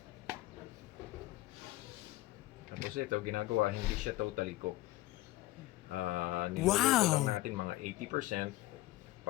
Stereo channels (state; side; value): quieter; right; 17.4 dB